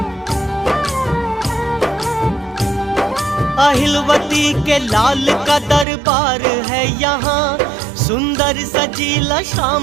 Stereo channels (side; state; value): left; drops out; at 5.9 s